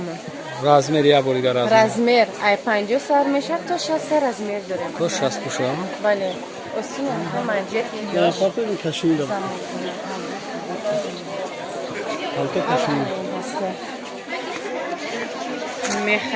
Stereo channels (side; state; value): both; identical; correlation 1.00